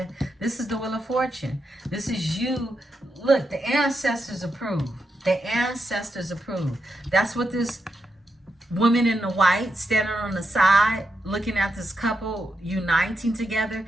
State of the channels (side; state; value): both; normal; correlation 0.85